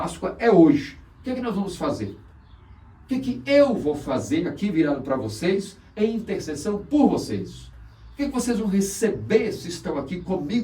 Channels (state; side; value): identical; both; correlation 1.00